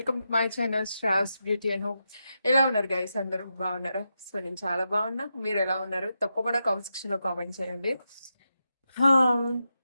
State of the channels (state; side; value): inverted; both; correlation -0.87